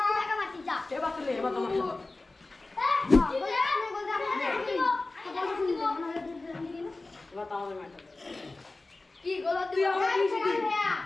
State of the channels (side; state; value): right; quieter; 3.2 dB